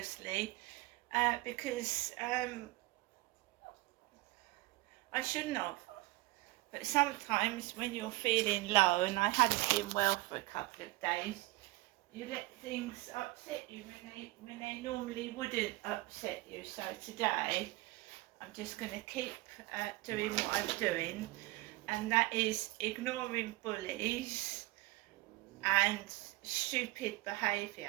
because I shouldn't have. But sometimes when you're feeling low, and I hadn't been well for a couple of days, you let things upset you when they normally wouldn't upset you. So today I'm just going to keep doing what I'm doing, and that is ignoring bullies and stupid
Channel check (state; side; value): quieter; left; 21.0 dB